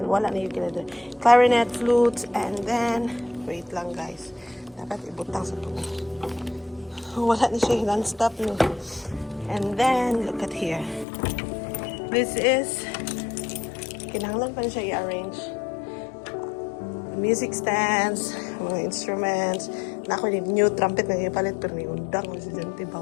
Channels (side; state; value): right; drops out; at 11.1 s